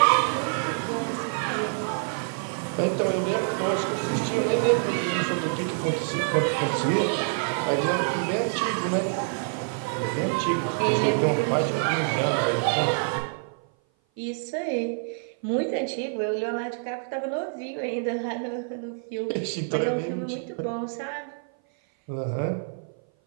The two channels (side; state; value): left; silent; 57 dB below the other